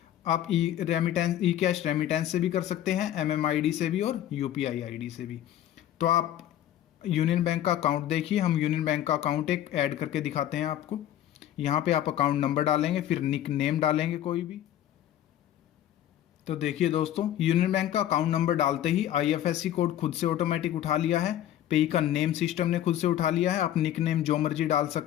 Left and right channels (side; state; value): right; quieter; 11.9 dB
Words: आप ई कैश रेमिटेंस से भी कर सकते हैं, एमएमआईडी से भी और यूपीआई आईडी से भी। तो आप यूनियन बैंक का अकाउंट देखिए। हम यूनियन बैंक का अकाउंट एक ऐड करके दिखाते हैं आपको। यहाँ पे आप अकाउंट नंबर डालेंगे, फिर निक नेम डालेंगे कोई भी। तो देखिए दोस्तों, यूनियन बैंक का अकाउंट नंबर डालते ही आईएफएससी कोड खुद से ऑटोमेटिक उठा लिया है। पेई का नेम सिस्टम ने खुद से उठा लिया है। आप निक नेम जो मर्जी डाल